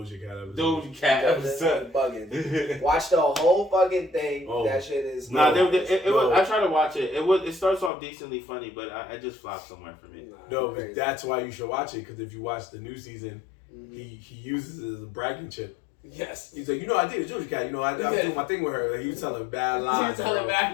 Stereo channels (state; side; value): drops out; right; at 7.9 s